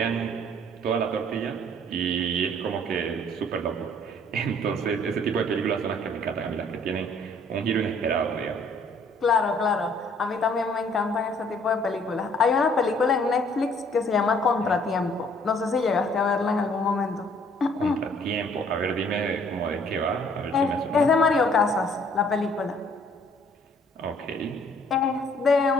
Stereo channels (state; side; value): normal; both; correlation 0.60